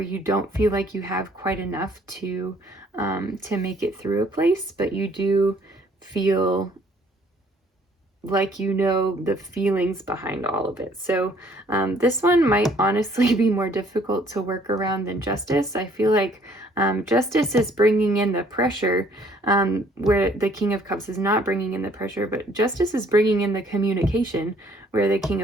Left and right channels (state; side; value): normal; both; correlation 0.61